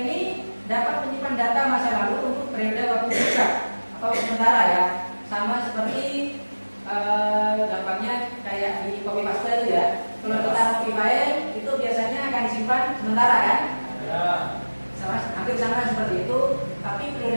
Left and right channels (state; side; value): inverted; both; correlation -1.00